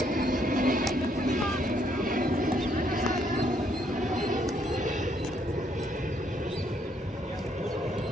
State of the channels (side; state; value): both; normal; correlation 0.71